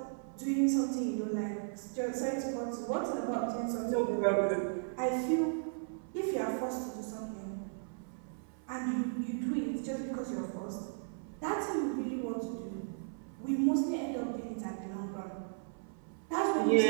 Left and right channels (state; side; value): silent; left; 54 dB below the other